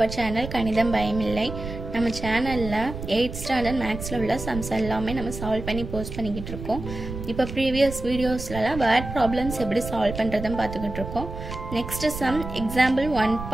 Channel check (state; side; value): noise; right; rumble, 8 dB below the sound